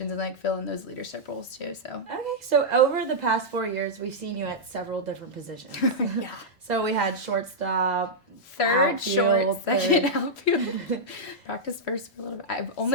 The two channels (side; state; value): both; normal; correlation -0.07